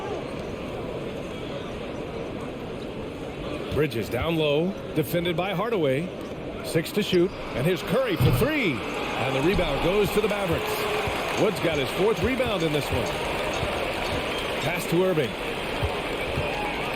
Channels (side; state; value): both; identical; correlation 1.00